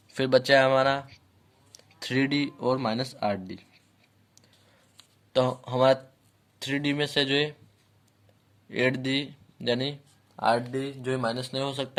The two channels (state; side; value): identical; both; correlation 1.00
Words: फिर बचा है हमारा 3d और माइनस 8d। तो हमारा 3d में से जो है 8d यानी 8d जो है माइनस नहीं हो